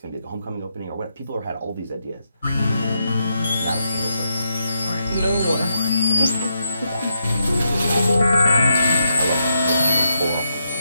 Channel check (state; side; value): inverted; both; correlation -0.82